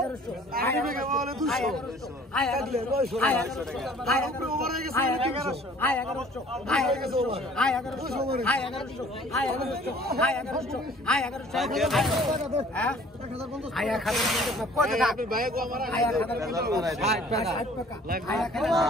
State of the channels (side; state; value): both; normal; correlation 0.53